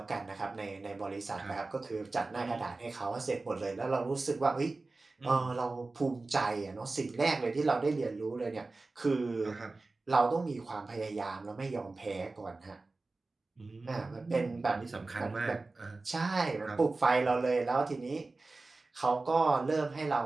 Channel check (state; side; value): quieter; left; 3.4 dB